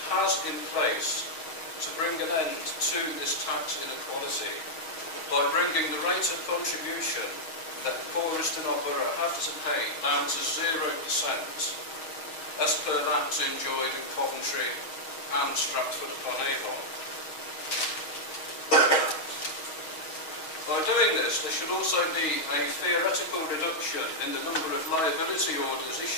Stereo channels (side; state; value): right; late; 6.3 ms